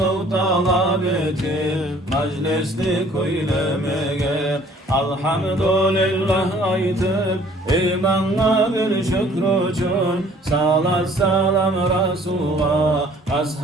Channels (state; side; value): normal; both; correlation 0.56